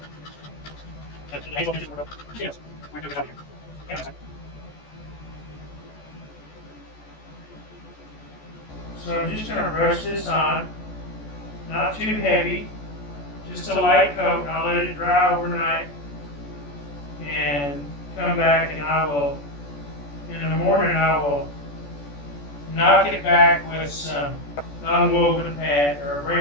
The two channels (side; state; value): right; late; 14 ms